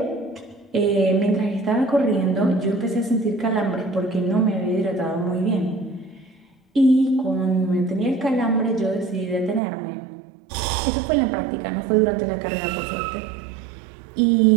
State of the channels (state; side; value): drops out; left; at 9.6 s